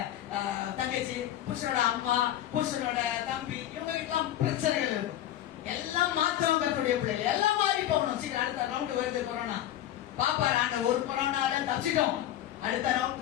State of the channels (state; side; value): quieter; right; 12.5 dB